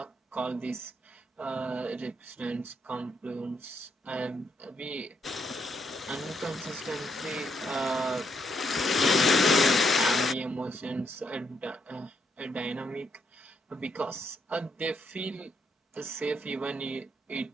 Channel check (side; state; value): both; normal; correlation 0.76